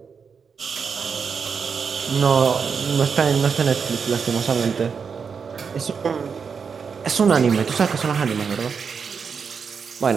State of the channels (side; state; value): left; quieter; 6.0 dB